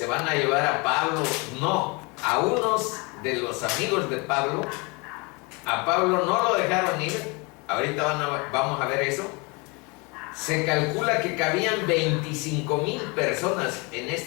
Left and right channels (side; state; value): right; quieter; 28.7 dB